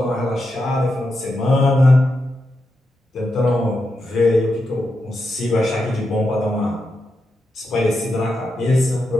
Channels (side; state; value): both; normal; correlation 0.86